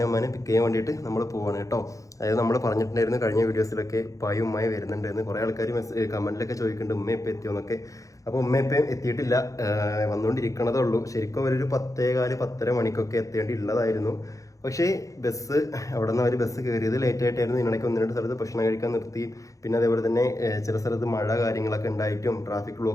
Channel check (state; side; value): late; right; 0.16 ms